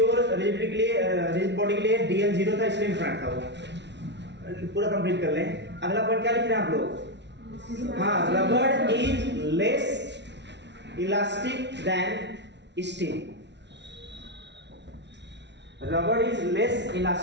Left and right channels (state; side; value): late; left; 0.51 ms